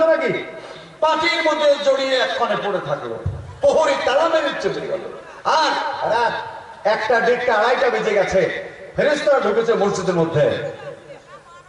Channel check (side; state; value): both; identical; correlation 1.00